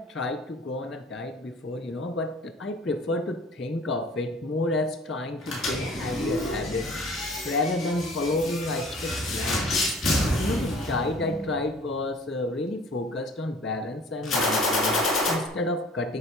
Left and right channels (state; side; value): normal; both; correlation 0.48